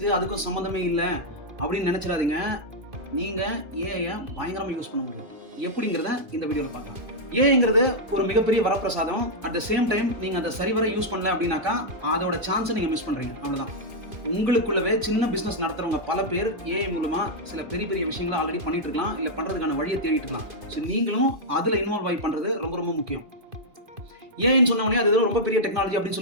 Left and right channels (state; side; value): late; left; 2.5 ms